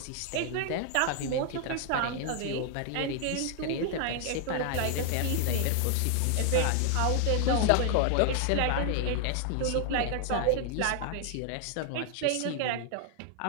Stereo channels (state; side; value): different; both; correlation 0.00